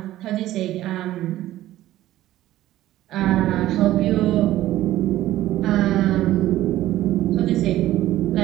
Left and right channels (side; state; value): left; quieter; 14.6 dB